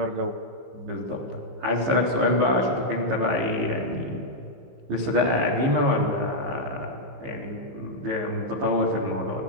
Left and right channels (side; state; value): left; late; 15 ms